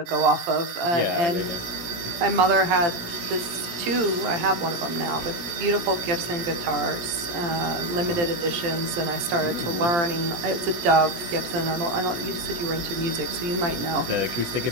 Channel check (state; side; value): late; left; 17 ms